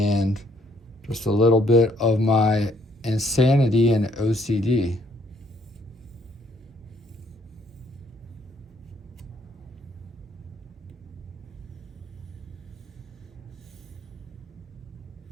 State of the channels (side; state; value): both; normal; correlation 0.67